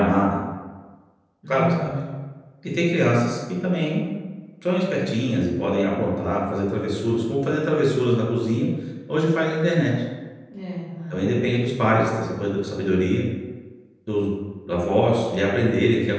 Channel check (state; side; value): identical; both; correlation 1.00